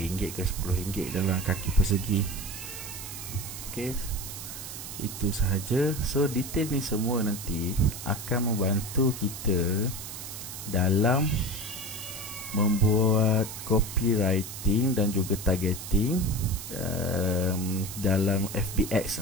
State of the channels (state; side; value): noise; right; hiss, 9 dB below the sound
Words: ke RM10 dalam kaki persegi. Okay, itu sahaja. So detail ni semua nanti akan membantu kita dalam membuat copywriting dan juga targeting dalam